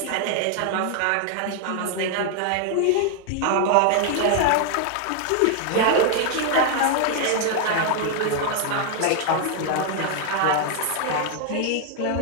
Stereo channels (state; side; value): different; both; correlation 0.00